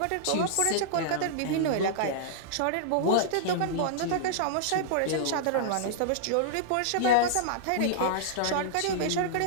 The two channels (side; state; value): both; different; correlation -0.02